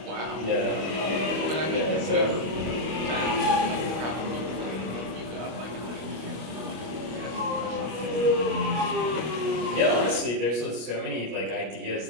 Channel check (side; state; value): left; late; 25 ms